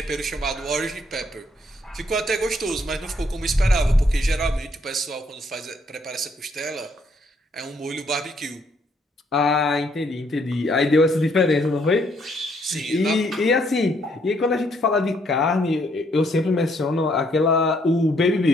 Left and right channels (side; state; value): both; normal; correlation 0.70